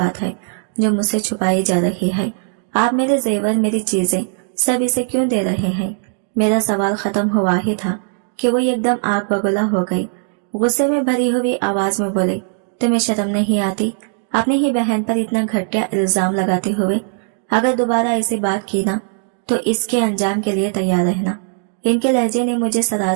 है जो मुझसे छुपाई जा रही है? आप मेरे जेवर, मेरी चीजें सब इसे क्यों दे रहे हैं? मेरा सवाल खत्म हुआ ही था कि वो एकदम आग बगुला हो गई। गुस्से में भरी हुई आवाज में बोले, तुम्हें शर्म नहीं आती अपनी ही बहन पर इतना घटिया इल्जाम लगाते हुए? अगर दोबारा ऐसी बात की ना तो इसके अंजाम के लिए तैयार रहना। इनके लहजे ने मुझे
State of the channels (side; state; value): left; silent; 59 dB below the other